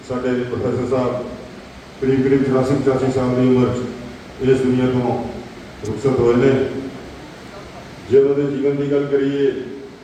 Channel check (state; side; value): identical; both; correlation 1.00